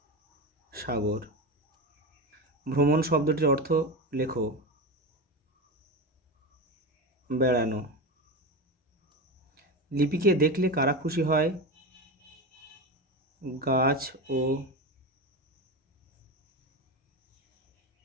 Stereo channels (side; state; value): both; normal; correlation 0.21